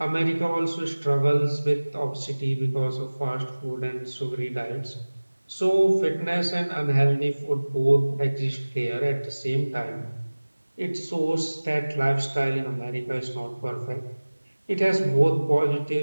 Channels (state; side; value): inverted; both; correlation -1.00